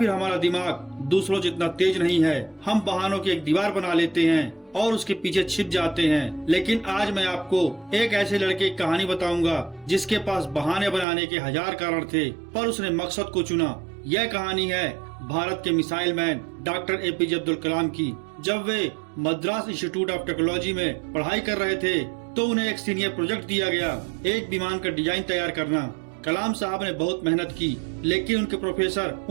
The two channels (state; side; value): drops out; left; at 11.1 s